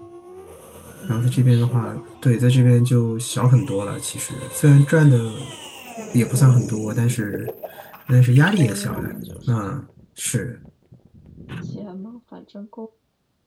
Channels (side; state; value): both; identical; correlation 1.00